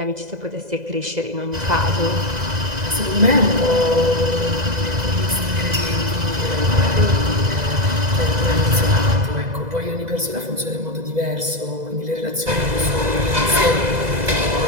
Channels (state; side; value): late; left; 2.0 ms